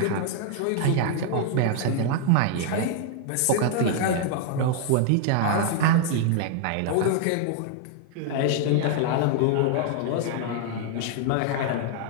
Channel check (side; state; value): both; different; correlation 0.00